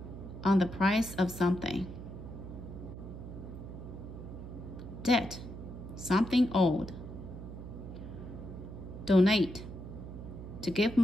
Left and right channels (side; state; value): right; noise; hum, 11 dB below the sound